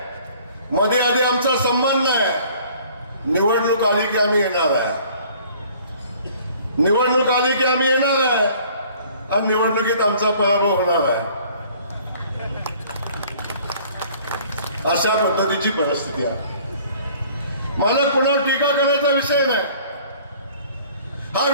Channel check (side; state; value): both; inverted; correlation -0.54